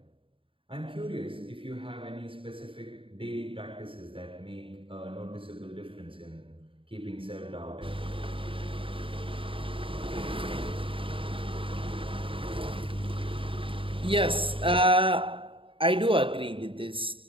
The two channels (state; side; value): late; left; 0.25 ms